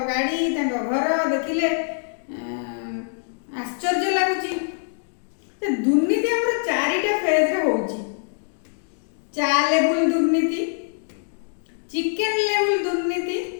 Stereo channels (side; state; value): right; silent; digital silence